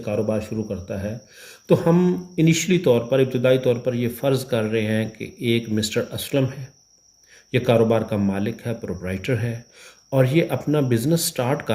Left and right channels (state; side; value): identical; both; correlation 1.00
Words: कारोबार शुरू करता है। तो हम इनिशियली तौर पर, इब्तदाई तौर पर ये फ़र्ज़ कर रहे हैं कि एक मिस्टर असलम है, ये कारोबार का मालिक है, प्रोप्राइटर है और ये अपना बिज़नेस स्टार्ट